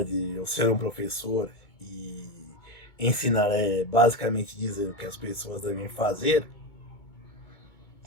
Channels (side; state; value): right; late; 2.2 ms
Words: de eu ser um professor e ensinar basicamente dizer o que as pessoas devem fazer,